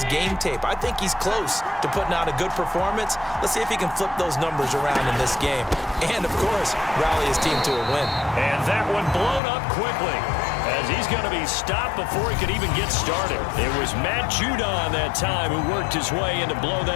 game tape. I think he's close to putting out a good performance. Let's see if he can flip those numbers around in this game. And, of course, rally his team to a win. And that one blown up quickly as he's going to be stopped before he could even get started. It was Matt Judon that time who worked his way in to blow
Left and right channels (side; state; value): right; drops out; at 9.4 s